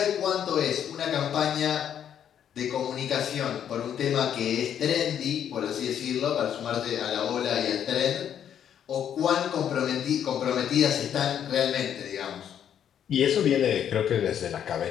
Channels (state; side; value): quieter; right; 9.3 dB